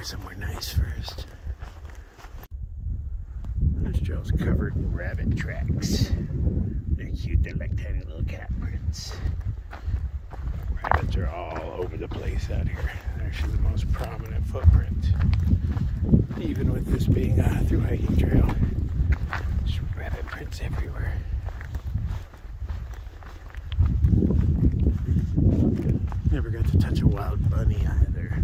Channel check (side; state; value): both; identical; correlation 1.00